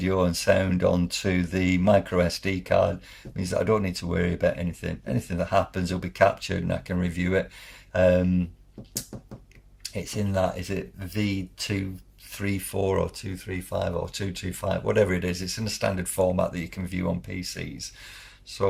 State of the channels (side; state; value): both; identical; correlation 1.00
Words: and sound onto the micro SD card means that I don't need to worry about anything. Anything that happens will be captured and I can review it. It's in that, is it V234 or 235 or 225, whatever it is. It's in a standard format that you can view on PCs.